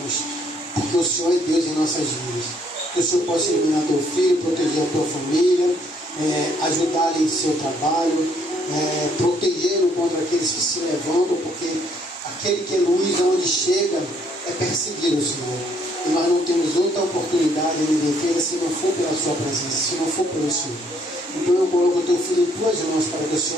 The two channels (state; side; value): normal; both; correlation 0.67